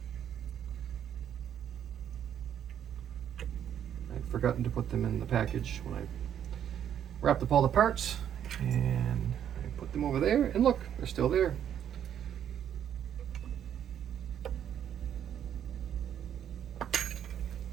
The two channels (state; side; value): quieter; left; 9.6 dB